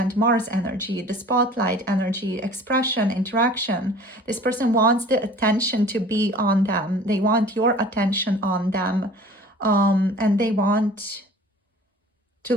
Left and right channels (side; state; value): both; normal; correlation 0.46